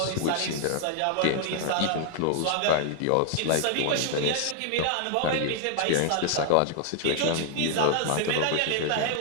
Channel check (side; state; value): both; different; correlation 0.00